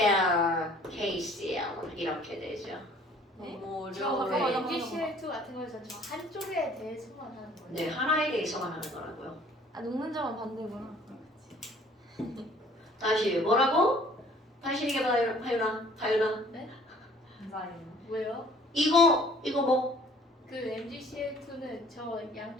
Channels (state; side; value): normal; both; correlation 0.55